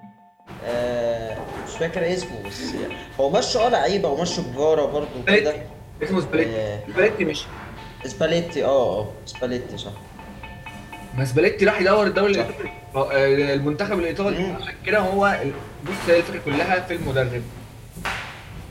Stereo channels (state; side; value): identical; both; correlation 1.00